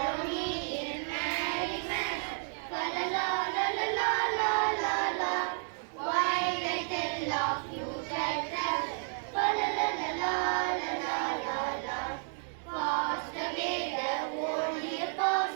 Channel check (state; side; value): silent; left; 57 dB below the other